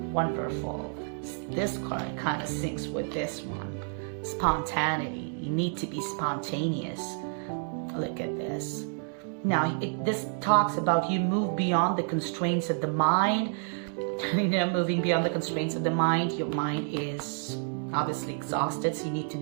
Wonderful. This card kind of syncs with this one. Spontaneity. You need to be spontaneous. Look at this. Now, this talks about you move beyond the constraints of the mind moving beyond the constraints of the mind. Your mind is obviously exhausted, so you need to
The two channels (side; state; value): left; silent; 58 dB below the other